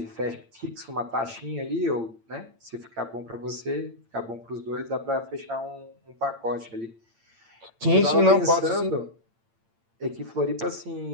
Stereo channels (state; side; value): late; left; 8.8 ms